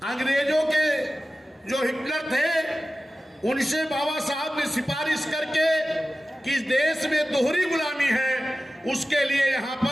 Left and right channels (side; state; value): both; normal; correlation 0.95